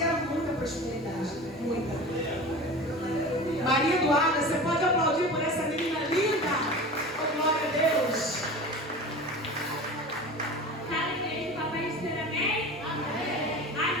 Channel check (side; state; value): both; normal; correlation 0.34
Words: era muita prosperidade. Muita. Maria Eduarda, você pode aplaudir por essa menina linda? Oh, glória a Deus. Sabe, igreja, papai dizer amém? Amém.